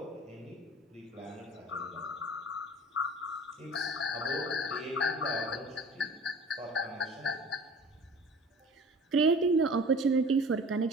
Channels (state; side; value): normal; both; correlation 0.43